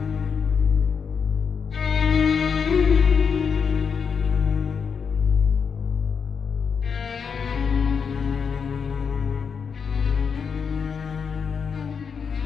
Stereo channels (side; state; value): right; quieter; 6.3 dB